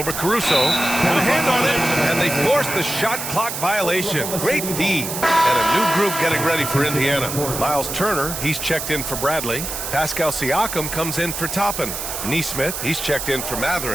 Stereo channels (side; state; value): right; noise; hiss, 5 dB below the sound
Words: Caruso. And a hand on it. And they force the shot clock violation. Great D. And a new group getting ready for Indiana. Miles Turner, he's checked in for Bradley. Pascal Siakam comes in for Toppin. Nesmith, he's checked in for